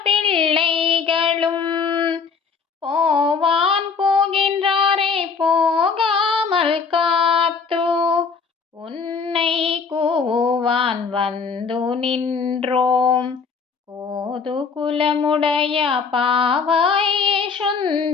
பிள்ளைகளும் போவான் போகின்றாரை போகாமல் காத்து உன்னை கூவான் வந்து நின்றோம். கோது குலமுடைய பாவாய்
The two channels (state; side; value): quieter; right; 5.4 dB